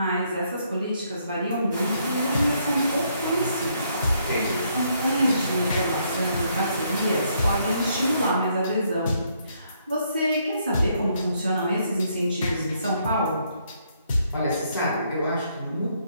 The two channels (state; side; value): inverted; both; correlation -0.72